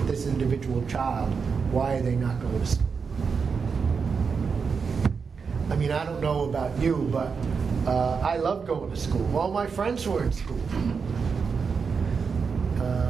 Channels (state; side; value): quieter; left; 5.6 dB